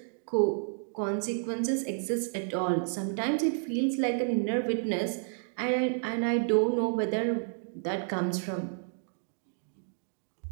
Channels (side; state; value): left; silent; digital silence